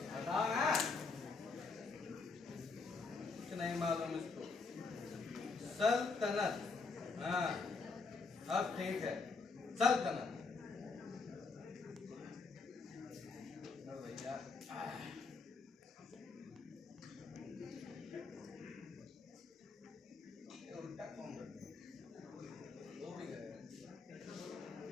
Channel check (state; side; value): quieter; right; 4.3 dB